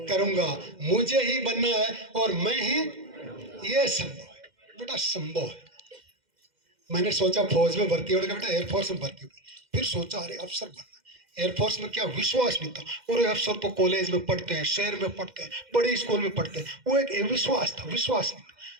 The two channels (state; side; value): late; left; 2.1 ms